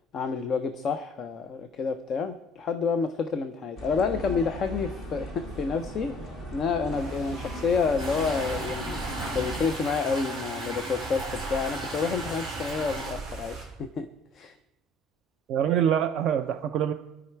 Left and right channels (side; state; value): both; normal; correlation 0.55